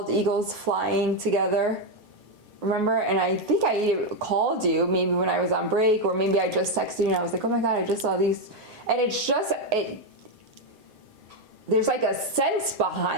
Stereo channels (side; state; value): left; late; 7.7 ms